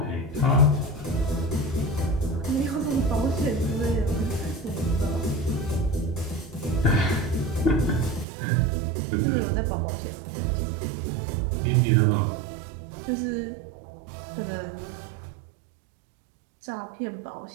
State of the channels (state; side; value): drops out; left; at 8.2 s